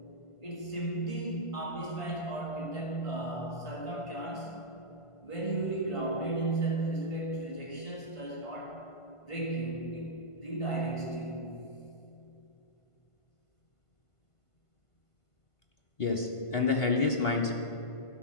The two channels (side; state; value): right; late; 1.5 ms